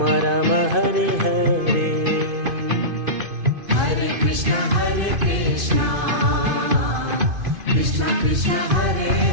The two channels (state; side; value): late; left; 2.5 ms